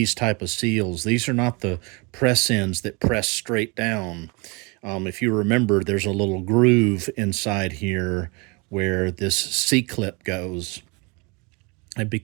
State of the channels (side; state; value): left; quieter; 29.8 dB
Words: type of seals. These are not the press ends that press straight down. If you remember, there's a little groove inside here where this C-clip goes. And